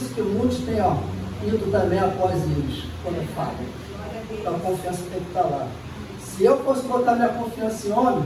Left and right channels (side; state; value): both; identical; correlation 1.00